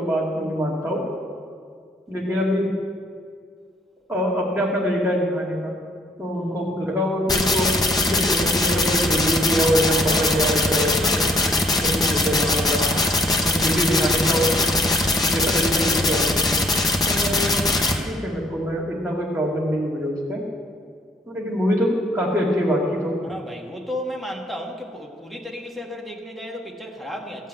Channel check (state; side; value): normal; both; correlation 0.63